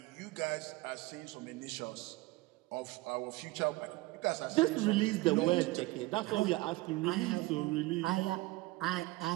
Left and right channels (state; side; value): quieter; left; 20.9 dB